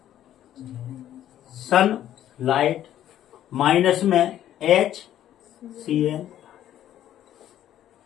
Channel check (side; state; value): right; quieter; 11.7 dB